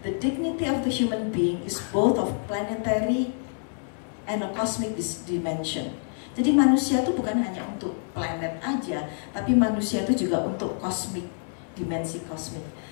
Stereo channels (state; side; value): silent; right; digital silence